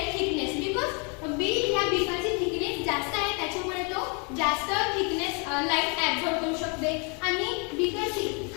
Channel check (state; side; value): quieter; right; 35.2 dB